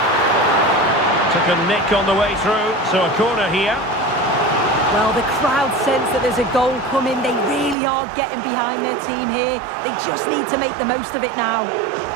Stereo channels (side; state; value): left; drops out; at 7.8 s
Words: Took a nick on the way through, so a corner here. Well, the crowd sense that there's a goal coming. They really are getting behind their team here. They just need to make the most of it now.